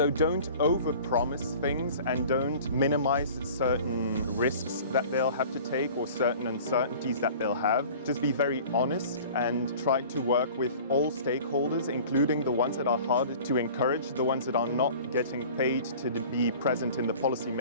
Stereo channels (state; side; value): inverted; both; correlation -0.44